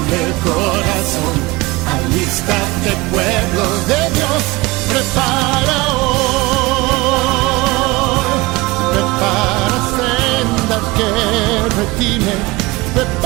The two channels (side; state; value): left; quieter; 22.0 dB